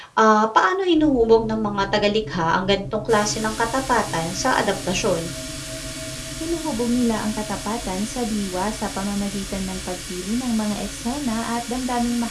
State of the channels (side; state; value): both; identical; correlation 1.00